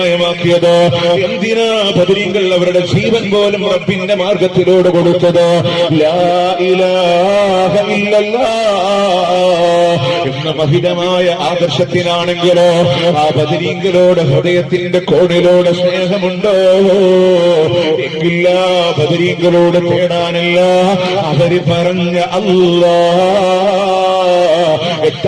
എന്തിനാ ബദരീങ്ങൾ അവരുടെ ജീവൻ പോലും റബ്ബിന്റെ മാർഗത്തിലൂടെ കൊടുത്തത്? ലാ ഇലാഹ ഇല്ലല്ലാഹ് എന്ന മഹിതമായ ആദർശത്തിനാണെങ്കിലോ ആ ബദരീങ്ങളോട് ഹൃദയത്തിന്റെ കോണിലോട് സ്നേഹമുണ്ടോ? എങ്കില്ല ബദരീങ്ങളോട് തേടാനല്ല അവര് പറഞ്ഞ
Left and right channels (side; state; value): both; identical; correlation 1.00